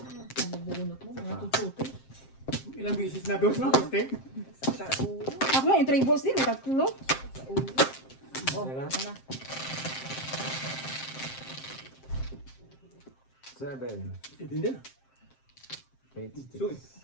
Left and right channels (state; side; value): late; right; 7.6 ms